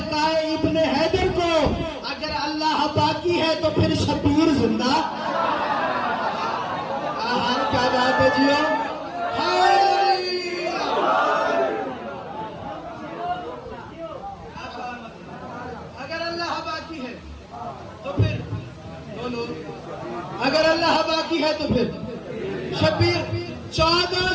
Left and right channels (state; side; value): identical; both; correlation 1.00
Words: इब्ने हैदर को, अगर अल्लाह बाकी है तो फिर शबीर जिंदा। क्या बात है जियो। अगर अल्लाह बाकी है तो फिर बोलो, अगर अल्लाह बाकी है तो फिर शबीर।